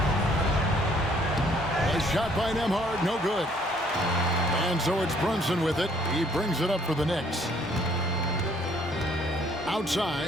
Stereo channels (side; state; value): both; normal; correlation 0.62